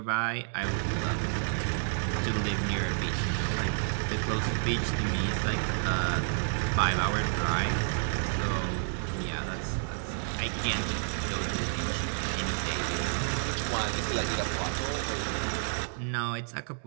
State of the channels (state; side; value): silent; left; 58 dB below the other